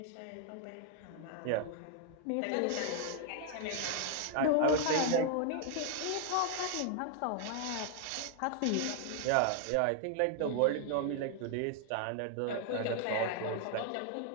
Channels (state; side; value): different; both; correlation 0.00